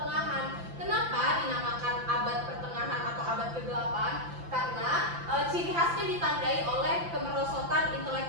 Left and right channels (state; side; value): late; left; 5.9 ms